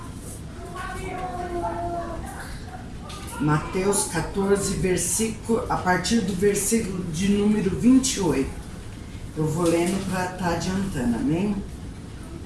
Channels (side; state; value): both; identical; correlation 1.00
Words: Mateus 14, versículo, a partir do versículo de número 28. Eu vou lendo para estar adiantando, amém?